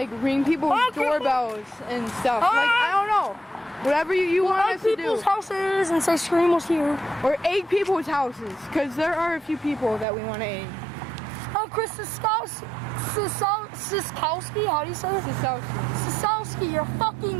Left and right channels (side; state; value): left; drops out; at 10.1 s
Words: ring people's doorbells and stuff, like I don't know, whatever you want us to do. People's houses and say Scream was here. Or egg people's houses, because there are a few people that we want to egg. Oh, Chris Siskowski, how do you say it? Siskowski, you're